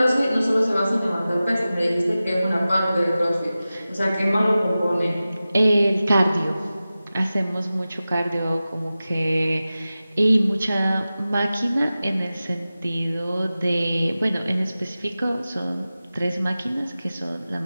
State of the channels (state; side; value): inverted; both; correlation -0.95